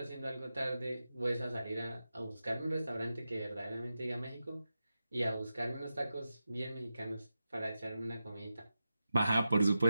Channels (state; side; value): inverted; both; correlation -0.91